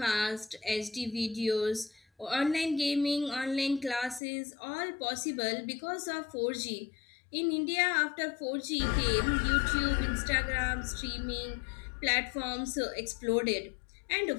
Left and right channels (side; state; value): right; drops out; at 4.2 s